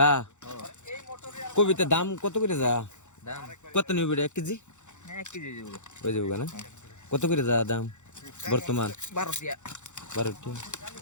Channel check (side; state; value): right; late; 0.84 ms